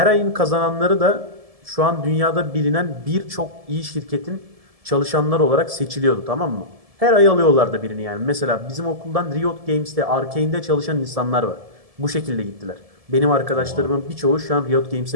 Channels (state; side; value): late; left; 1.7 ms